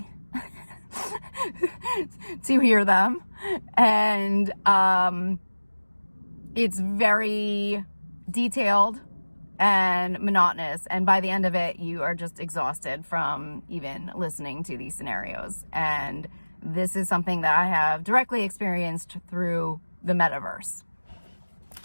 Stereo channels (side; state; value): both; inverted; correlation -1.00